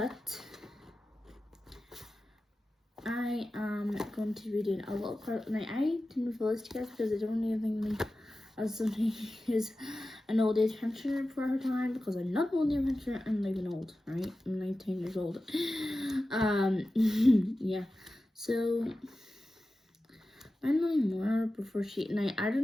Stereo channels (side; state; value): both; normal; correlation 0.94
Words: I am going to be doing a little part. Now, I didn't reveal this to you guys because I don't even think as somebody who's an old age pensioner for her time, because I'm not an old age pensioner, I'm not even old, right? I'm 19 years old. Yeah. So I don't know anymore before she. Now I